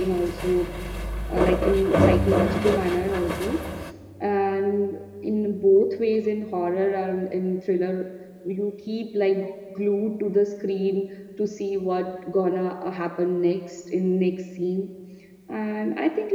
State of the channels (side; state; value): both; identical; correlation 1.00